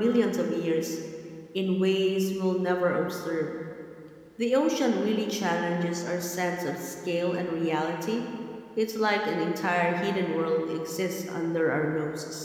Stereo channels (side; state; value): both; identical; correlation 1.00